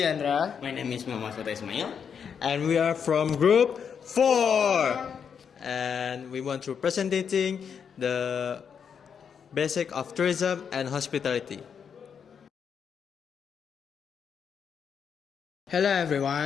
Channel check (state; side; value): quieter; right; 7.1 dB